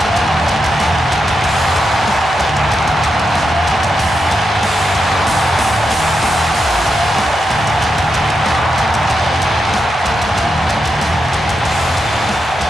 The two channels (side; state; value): both; normal; correlation 0.86